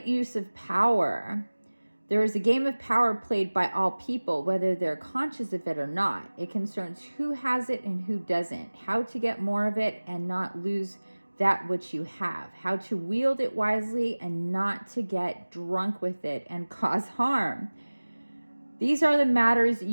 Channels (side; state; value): both; inverted; correlation -1.00